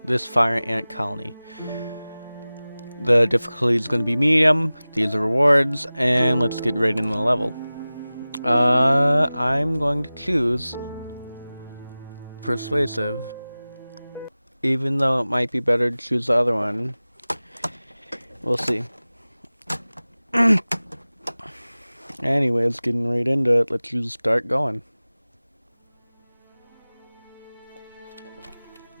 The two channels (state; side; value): inverted; both; correlation -0.98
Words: The difficulty is going to be medium. These are rewards, and let's get right into the level. I'm going to choose persuasive, even though it might be better to choose the other one. We'll see. Anyways, getting right into it, let's just start going.